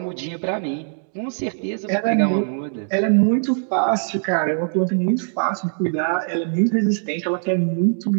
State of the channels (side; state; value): left; silent; digital silence